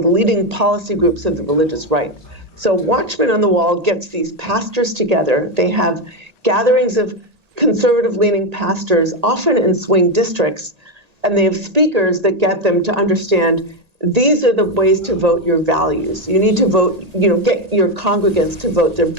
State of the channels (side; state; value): left; late; 1.8 ms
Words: the leading policy groups of the religious right. So Watchmen on the Wall gets these pastors together. They have gatherings of conservative-leaning pastors, often in swing districts, and they have speakers that get them to understand these are the ways to vote your values. You need to vote, get your congregants to vote their